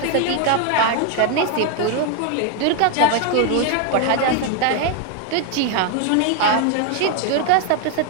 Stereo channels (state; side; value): different; both; correlation 0.01